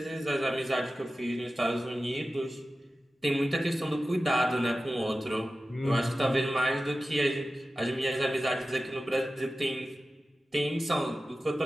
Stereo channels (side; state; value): both; normal; correlation 0.94